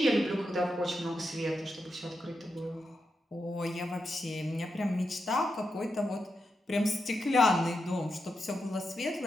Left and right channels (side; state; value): both; normal; correlation 0.86